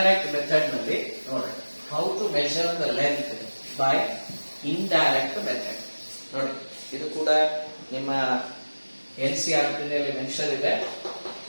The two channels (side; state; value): both; inverted; correlation -1.00